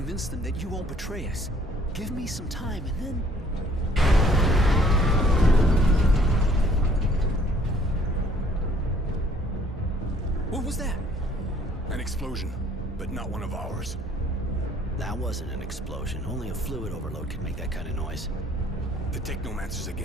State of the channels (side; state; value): both; normal; correlation 0.59